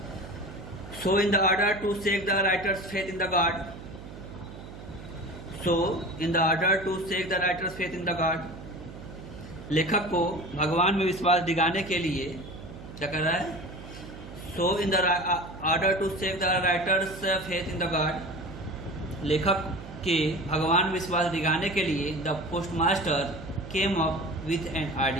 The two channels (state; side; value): noise; right; hum, 14 dB below the sound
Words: So in the order to seek the writer's faith in the God, so in the order to seek the writer's faith in the God, लेखक को भगवान में विश्वास दिलाने के लिए क्या कर रहा है, so in the order to seek the writer's faith in the God, लेखक के भगवान में विश्वास दिलाने के लिए the post master came up with an